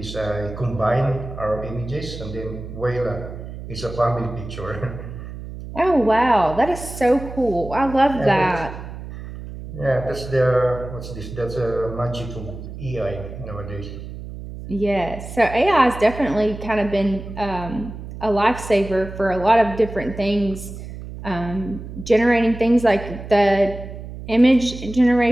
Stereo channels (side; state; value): right; noise; hum, 11 dB below the sound